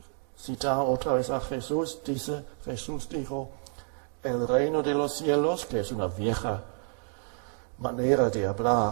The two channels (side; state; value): left; silent; 58 dB below the other